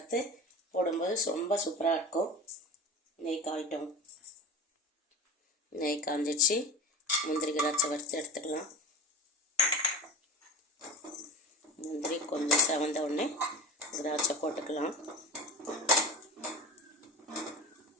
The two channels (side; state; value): both; normal; correlation 0.30